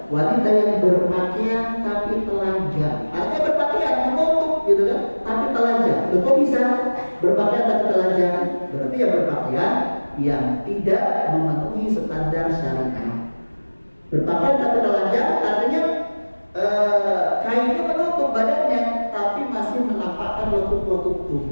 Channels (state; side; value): inverted; both; correlation -1.00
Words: wanita yang berpakaian tapi telanjang. Artinya berpakaian menutup gitu kan, tapi telanjang. Kok bisa berpakaian tapi telanjang? Berarti ya berpakaian yang tidak memenuhi standar syariat. Berpakaian tapi telanjang artinya kainnya menutup badannya tapi masih menampakkan lekuk-lekuk